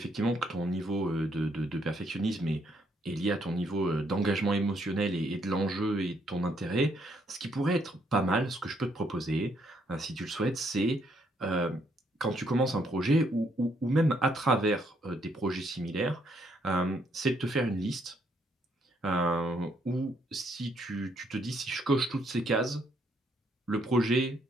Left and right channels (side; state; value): both; normal; correlation 0.71